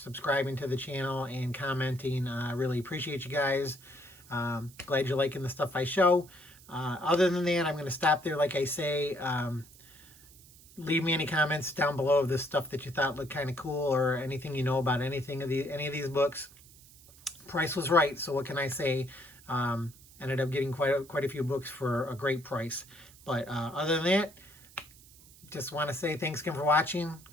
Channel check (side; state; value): right; noise; hiss, 23 dB below the sound